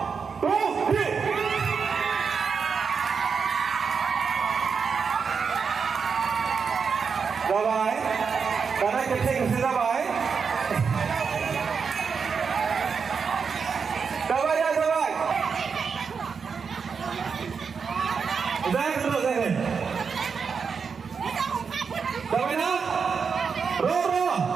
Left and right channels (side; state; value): left; quieter; 5.8 dB